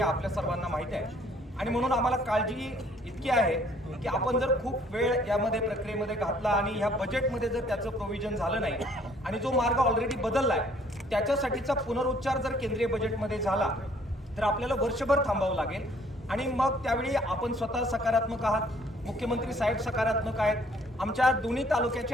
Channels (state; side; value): normal; both; correlation 0.60